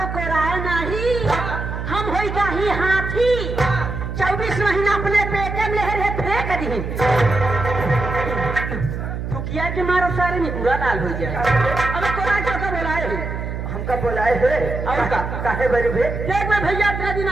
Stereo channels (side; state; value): right; noise; hum, 5 dB below the sound